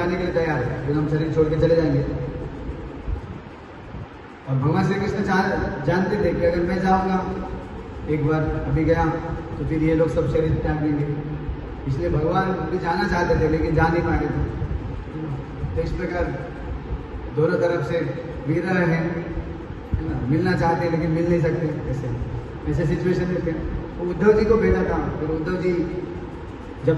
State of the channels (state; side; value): identical; both; correlation 1.00